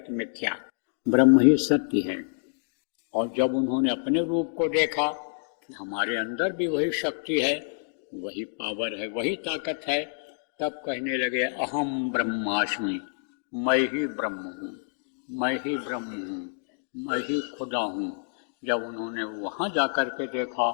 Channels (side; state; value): right; silent; digital silence